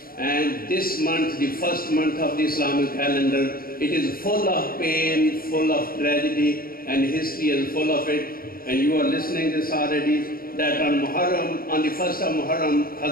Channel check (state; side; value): late; right; 0.43 ms